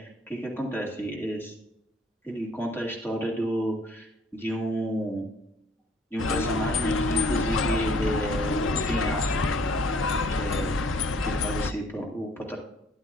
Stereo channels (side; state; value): both; normal; correlation 0.59